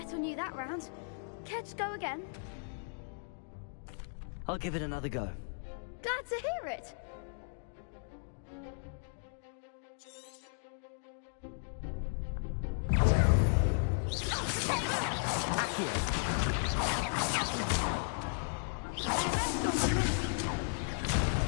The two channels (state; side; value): silent; right; digital silence